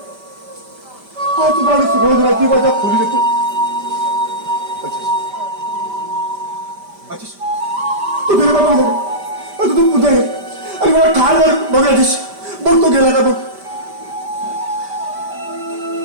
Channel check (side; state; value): left; late; 5.1 ms